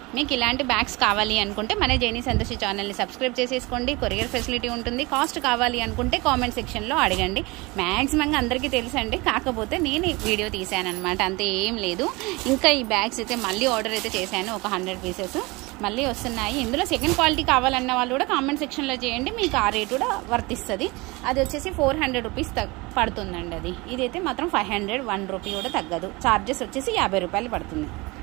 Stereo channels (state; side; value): quieter; left; 24.2 dB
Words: మీకు ఇలాంటి బ్యాగ్స్ కావాలి అనుకుంటే మన జైనీ సంతోషి ఛానల్ని సబ్స్క్రైబ్ చేసేసుకోండి. కొరియర్ ఫెసిలిటీ ఉంటుంది. కాస్ట్ కావాలి అనుకుంటే కామెంట్ సెక్షన్లో అడగండి. మ్యాక్సిమంగా అందరికీ తెలుసండి, కాకపోతే నేను వీడియో తీసాను అనమాట, అంతే ఏం లేదు. ఇంకా ఈ బ్యాగ్స్ అయితే మళ్ళీ ఆర్డర్ అయితే చేశాను, ఒక 100 పీసెస్ మళ్ళీ వస్తున్నాయి. ఇందులో సెకండ్ క్వాలిటీ కావాలన్న వాళ్ళు కూడా కామెంట్ సెక్షన్లో చేయండి, మీకు ఆ రేట్ కూడా వర్తిస్తుంది. అది వచ్చేసి 400 రూపీస్ పడుతుందండి. అది ఇదైతే మాత్రం 500, 1 రూపీ కూడా తగ్గదు. ఛార్జెస్ వచ్చేసి 50 రూపాయలు పడుతుంది.